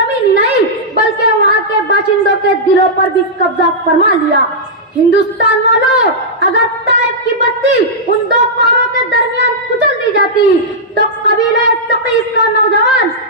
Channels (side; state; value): both; normal; correlation -0.10